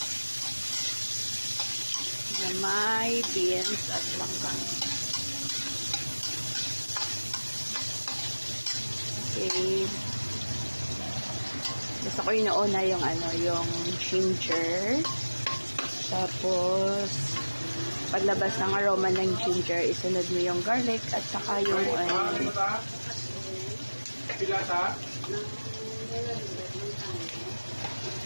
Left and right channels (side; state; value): both; inverted; correlation -1.00